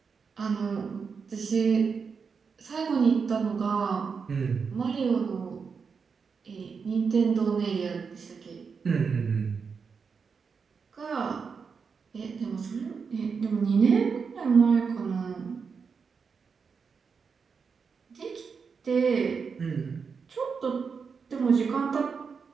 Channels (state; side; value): quieter; left; 5.6 dB